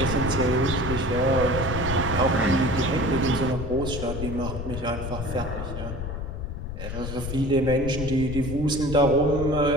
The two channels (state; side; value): noise; left; rumble, 6 dB below the sound